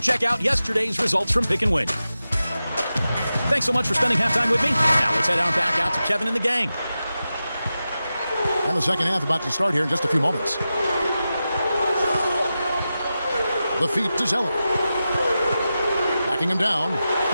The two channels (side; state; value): both; inverted; correlation -0.92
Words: check out yesterday's results from Pick and Win. Thanks so much for spending halftime with me. Now let's head on back out to Kevin and the gang. And the second half about to start here in just a few moments. The feet to Zeller. Backing him down.